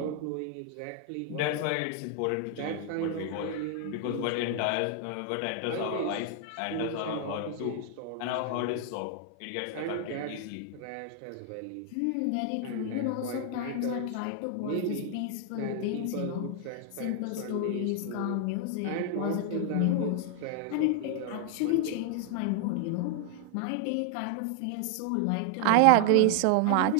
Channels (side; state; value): both; different; correlation 0.00